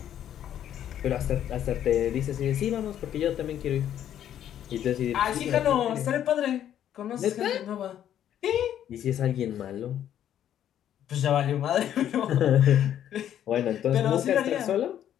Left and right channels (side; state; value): right; quieter; 10.6 dB